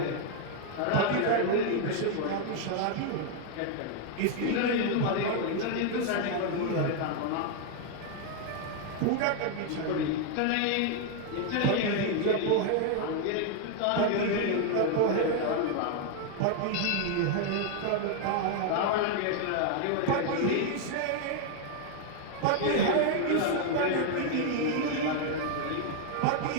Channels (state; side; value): different; both; correlation 0.00